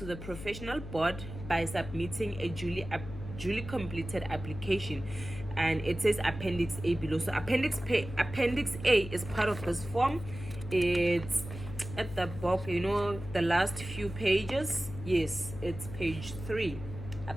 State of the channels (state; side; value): noise; left; hum, 11 dB below the sound